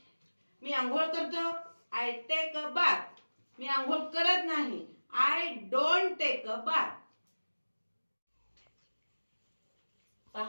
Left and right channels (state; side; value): inverted; both; correlation -1.00